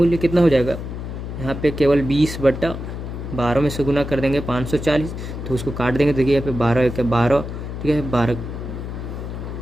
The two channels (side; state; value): left; noise; hum, 7 dB below the sound